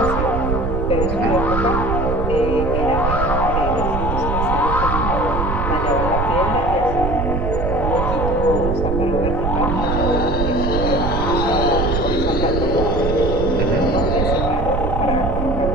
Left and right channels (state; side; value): noise; right; rumble, 1 dB below the sound